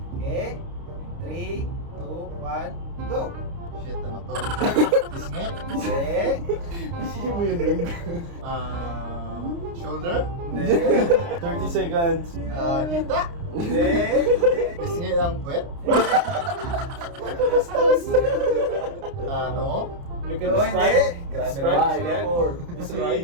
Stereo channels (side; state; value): left; late; 29 ms